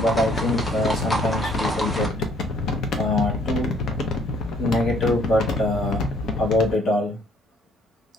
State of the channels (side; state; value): both; normal; correlation 0.63